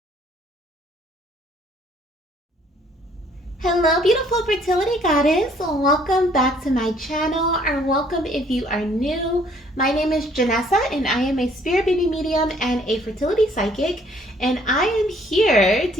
Hello, beautiful fertility goddess. Welcome back to my channel, or welcome if you are new. My name is Janessa, and I am a spirit baby medium and a fertility psychic. And I am here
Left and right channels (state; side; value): normal; both; correlation 0.61